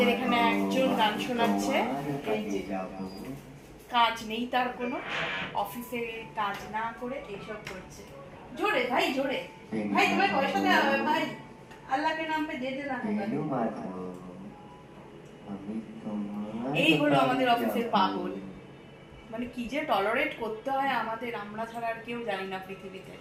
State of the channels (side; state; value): both; identical; correlation 1.00